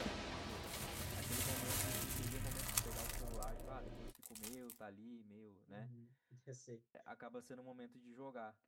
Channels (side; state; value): both; identical; correlation 1.00